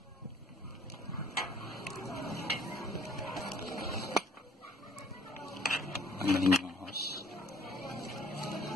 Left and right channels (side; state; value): both; normal; correlation 0.57